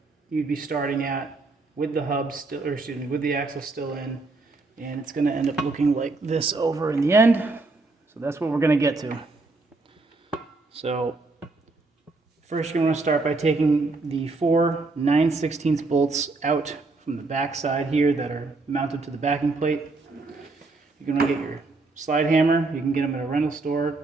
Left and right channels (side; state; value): left; quieter; 3.5 dB